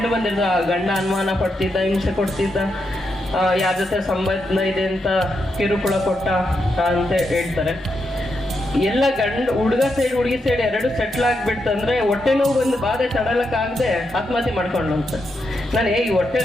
ಬಂದಿರೋದು, ಗಂಡ ಅನುಮಾನ ಪಡ್ತಿದ್ದ, ಹಿಂಸೆ ಕೊಡ್ತಿದ್ದ, ಯಾರ ಜೊತೆ ಸಂಬಂಧ ಇದೆ ಅಂತ ಕಿರುಕುಳ ಕೊಟ್ಟ ಅಂತ ಹೇಳ್ತಾರೆ. ಎಲ್ಲ ಹುಡುಗ ಸೈಡ್ ಹುಡುಗಿ ಸೈಡ್ ಎರಡು ಸೆಟ್ಲ್ ಆಗ್ಬಿಡ್ತಂದ್ರೆ ಹೊಟ್ಟೆ ನೋವು ಬಂದು ಬಾಧೆ ತಡಲಕ್ಕಾಗದೆ ಆತ್ಮಹತ್ಯೆ ಮಾಡ್ಕೊಂಡು ಅಂತ. ನಾನು ಈ ಹೊಟ್ಟೆ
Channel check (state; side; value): normal; both; correlation 0.83